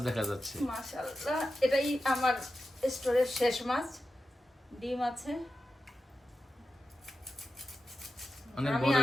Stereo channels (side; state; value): both; normal; correlation 0.91